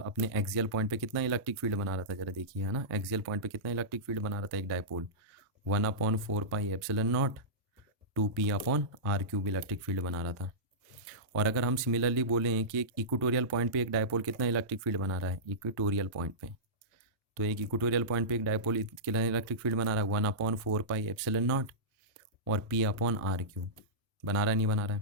अपने एक्सियल पॉइंट पे कितना इलेक्ट्रिक फील्ड बना रहा था, जरा देखिए, है ना। एक्सियल पॉइंट पे कितना इलेक्ट्रिक फील्ड बना रहा था एक dipole, 1/4 pi epsilon nought 2p upon R cube electric field बना रहा था। और अगर हम सिमिलरली बोलें कि एक इक्वेटोरियल पॉइंट पे एक डायपोल कितना इलेक्ट्रिक फील्ड बना रहा है इक्वेटोरियल पॉइंट पे, तो एक इक्वेटोरियल पॉइंट पे एक डायपोल कितना इलेक्ट्रिक फील्ड बना रहा है 1/4 पाई एप्सिलॉन नॉट और p अपॉन आर क्यूब, बना रहा है नहीं बना रहा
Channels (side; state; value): both; normal; correlation -0.17